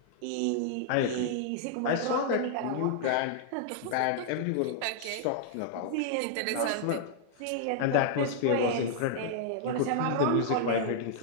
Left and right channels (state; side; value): different; both; correlation -0.01